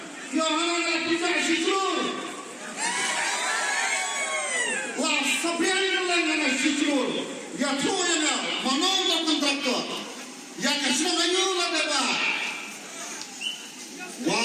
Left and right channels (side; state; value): both; identical; correlation 1.00